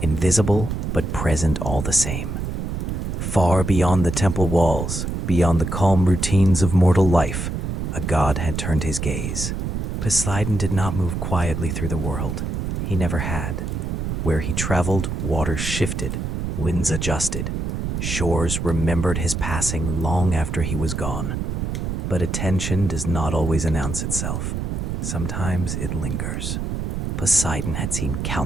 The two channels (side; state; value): right; noise; rumble, 3 dB below the sound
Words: invisible but present all the same. Far beyond the temple walls, beyond the calm routines of mortal life, a god had turned his gaze. Poseidon did not move quietly through the world. He never had. Where he traveled, waters shifted, winds adjusted. Shores remembered his passing long after he was gone. But attention does not always announce itself. Sometimes it lingers. Poseidon had seen